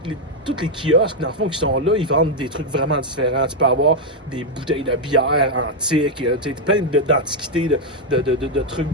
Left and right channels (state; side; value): normal; both; correlation 0.00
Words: les kiosques, dans le fond, qui sont là, ils vendent des trucs vraiment différents. Tu peux avoir des bouteilles de bière antiques, plein d'antiquités, de trucs